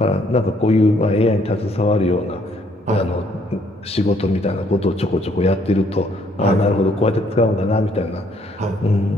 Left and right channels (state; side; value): normal; both; correlation 0.67